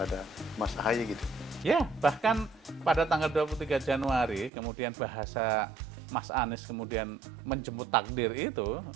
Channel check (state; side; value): drops out; left; at 4.5 s